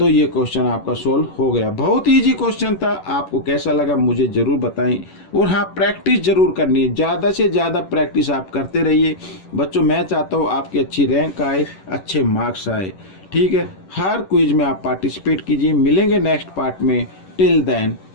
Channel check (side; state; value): right; late; 11 ms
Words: ये क्वेश्चन आपका सोल्व हो गया। बहुत इजी क्वेश्चन था। आपको कैसा लगा मुझे ज़रूर बताएं। और हाँ, प्रैक्टिस ज़रूर करनी है, ज़्यादा से ज़्यादा प्रैक्टिस आप करते रहिए बच्चों। मैं चाहता हूँ आपकी अच्छी रैंक आए, अच्छे मार्क्स आए। ठीक है, हर क्विज में आप पार्टिसिपेट कीजिए। मिलेंगे नेक्स्ट पार्ट में। Till then,